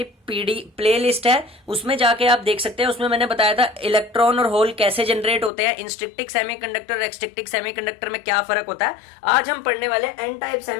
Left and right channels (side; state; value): right; drops out; at 5.5 s